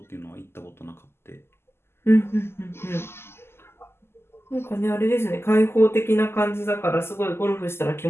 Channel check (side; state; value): right; late; 0.12 ms